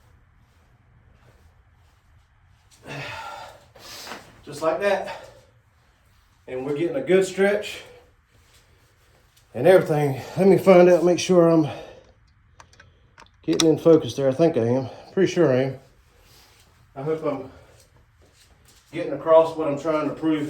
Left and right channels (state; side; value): identical; both; correlation 1.00